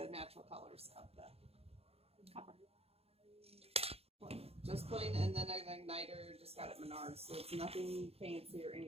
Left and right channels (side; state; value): left; late; 0.29 ms